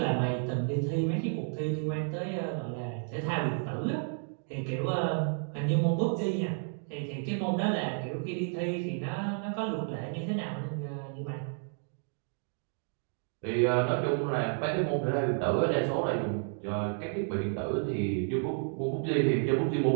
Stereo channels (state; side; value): silent; left; 57 dB below the other